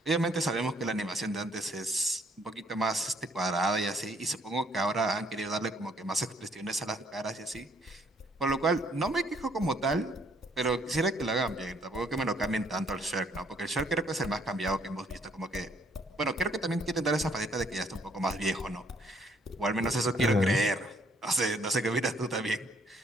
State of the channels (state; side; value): normal; both; correlation 0.66